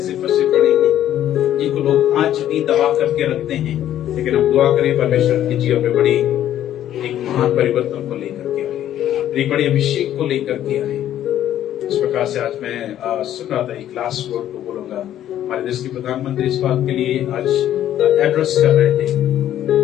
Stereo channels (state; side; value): quieter; right; 11.7 dB